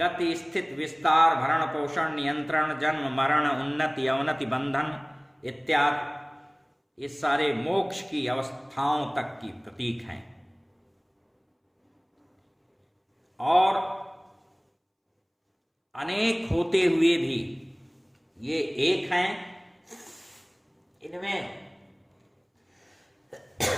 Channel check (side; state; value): both; identical; correlation 1.00